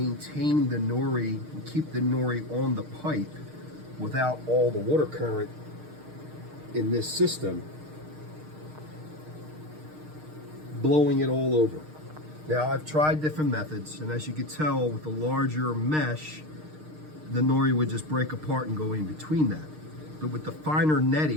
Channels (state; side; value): late; left; 6.5 ms